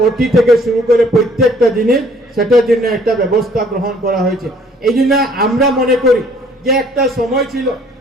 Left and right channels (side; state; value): both; normal; correlation 0.58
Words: ওটি থেকে শুরু করে প্রত্যেকটা জিনিস, সেটার জন্য একটা ব্যবস্থা গ্রহণ করা হয়েছে। এই জন্য আমরা মনে করি যে একটা সময় ছিল